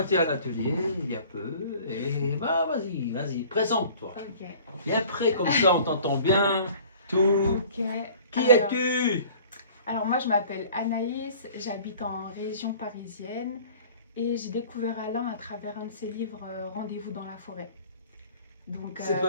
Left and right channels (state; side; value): inverted; both; correlation -0.48